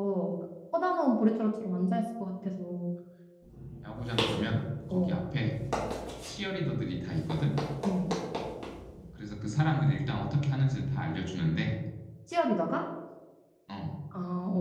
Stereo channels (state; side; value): identical; both; correlation 1.00